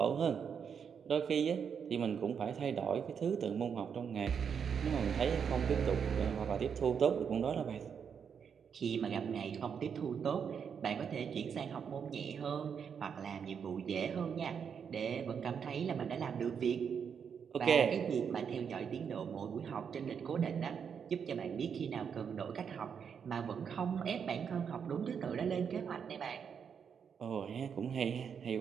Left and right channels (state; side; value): quieter; left; 7.1 dB